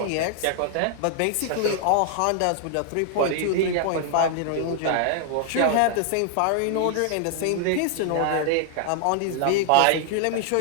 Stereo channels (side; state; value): both; different; correlation 0.00